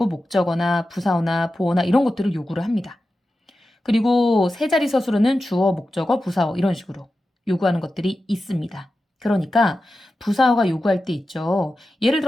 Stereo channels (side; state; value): both; normal; correlation 0.92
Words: 목적어나 부사어나 보어나 이런 것들을 요구를 합니다. 그리고 세 자리 서술어는 주어, 목적어, 부사어 이런 식으로 요구하는 것들이 있습니다. 그러니까 부사어가 요구할 때 있죠. 예를